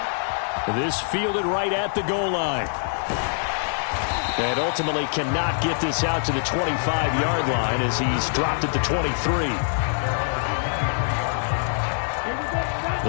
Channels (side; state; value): right; silent; digital silence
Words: This fielded right at the goal line. And ultimately cannot get this out to the 25-yard line as he's dropped at the 23.